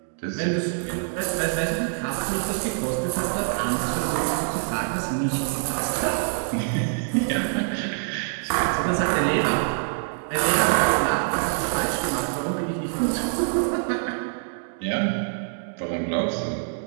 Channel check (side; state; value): left; silent; digital silence